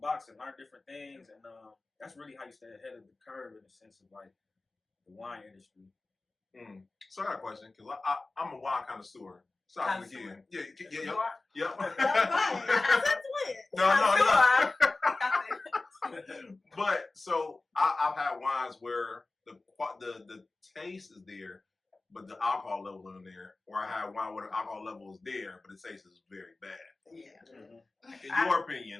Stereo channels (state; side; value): quieter; right; 3.3 dB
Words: and learned different things. And that's really how you stay ahead of the curve in the sense of like the wine industry. So I got a question because I'm a wine connoisseur. So I was again. Yeah. Yep. No. But so I've had wines where the taste is there, but the alcohol level isn't there. Or I had wine where the alcohol level is there, but the taste is very bad. Yeah. In your